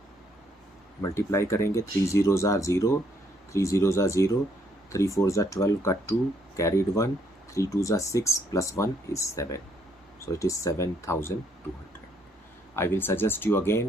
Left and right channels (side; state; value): both; normal; correlation 0.70